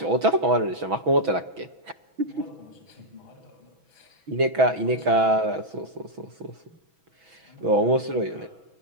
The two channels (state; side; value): late; left; 6.1 ms